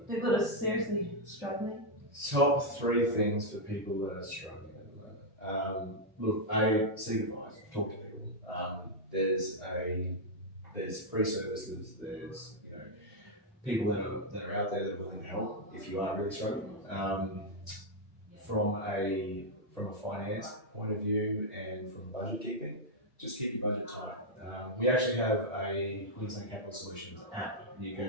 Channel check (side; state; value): both; normal; correlation -0.03